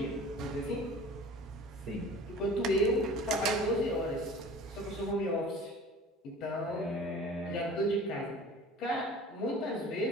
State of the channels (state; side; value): normal; both; correlation 0.43